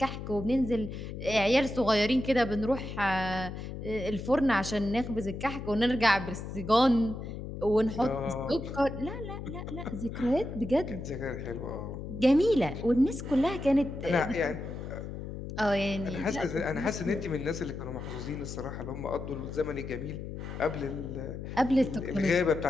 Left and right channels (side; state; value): left; noise; hum, 8 dB below the sound